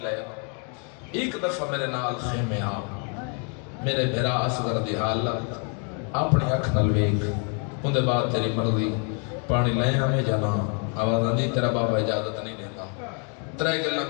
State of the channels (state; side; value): quieter; right; 39.6 dB